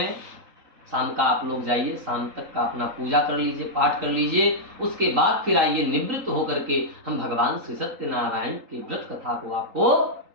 शाम का आप लोग जाइए, शाम तक का अपना पूजा कर लीजिए, पाठ कर लीजिए। उसके बाद फिर आइए, निवृत्त होकर के हम भगवान श्री सत्यनारायण की व्रत कथा को आपको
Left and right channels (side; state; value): left; late; 3.8 ms